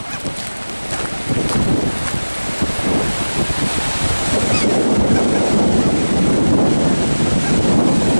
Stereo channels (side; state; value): both; inverted; correlation -1.00